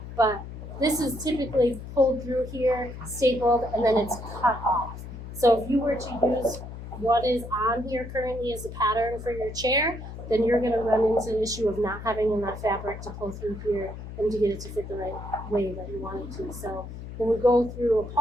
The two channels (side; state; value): left; noise; hum, 11 dB below the sound